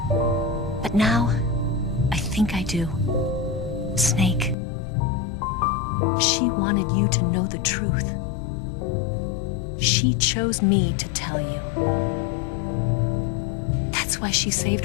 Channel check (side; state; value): right; drops out; at 4.5 s